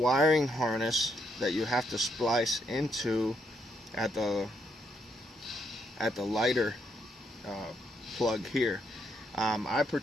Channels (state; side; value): normal; both; correlation 0.75